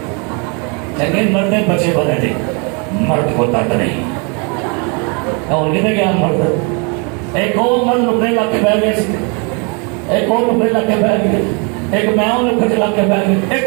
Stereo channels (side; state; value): left; quieter; 34.1 dB